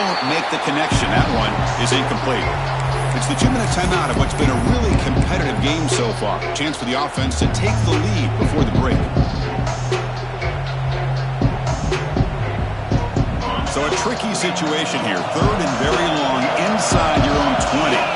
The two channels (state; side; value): identical; both; correlation 1.00